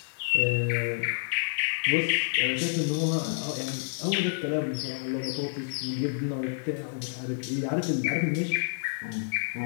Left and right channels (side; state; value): right; silent; digital silence